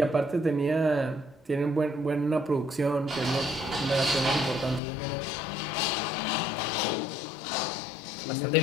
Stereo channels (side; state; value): right; drops out; at 4.8 s